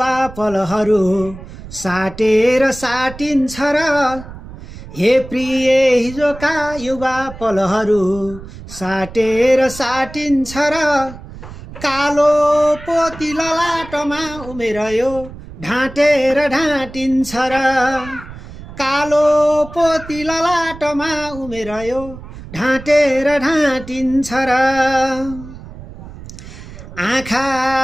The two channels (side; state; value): right; noise; rumble, 15 dB below the sound